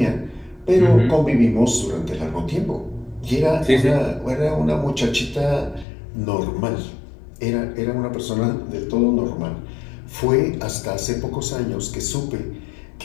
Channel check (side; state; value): right; drops out; at 5.9 s